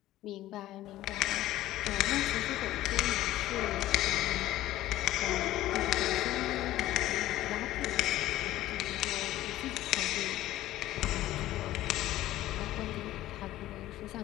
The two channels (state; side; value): quieter; right; 14.9 dB